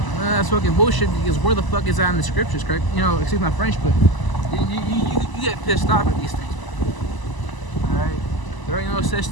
That's fucking bullshit, because where the fuck is that in the scriptures, correct? Excuse my French, but you get pissed off at these things. Alright? There ain't no such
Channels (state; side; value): late; right; 1.0 ms